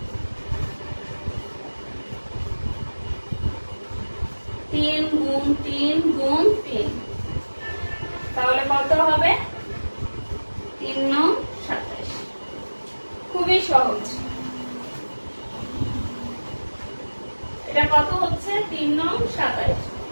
3 গুণ 3 গুণ 3, তাহলে কত হবে? 3 9 27। খুবই সহজ। এটা কত হচ্ছে? 3 9 27।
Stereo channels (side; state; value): both; inverted; correlation -1.00